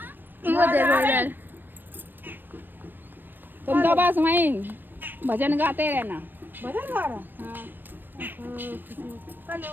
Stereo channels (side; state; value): left; late; 0.093 ms